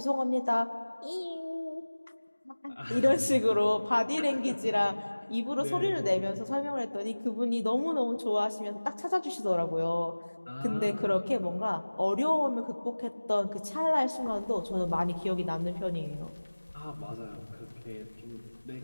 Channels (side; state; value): both; inverted; correlation -1.00